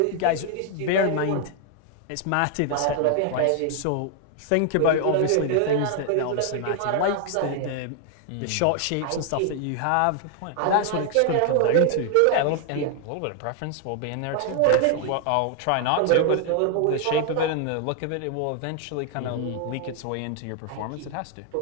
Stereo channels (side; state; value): both; different; correlation 0.00